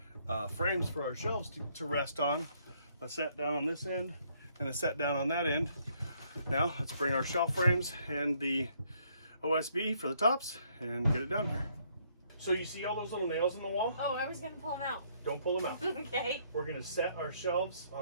frames for our shelves to rest on. A set down on this end and a set down on that end. Now let's bring our shelf frames and the OSB for the tops and get it down here. So you see all those little nails in the wall? Oh, I was gonna pull them out. Don't pull them out. Okay. We're gonna set our shelves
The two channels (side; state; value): both; inverted; correlation -0.68